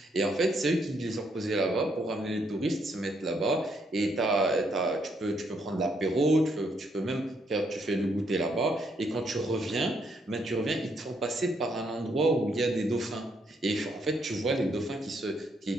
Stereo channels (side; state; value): both; normal; correlation 0.74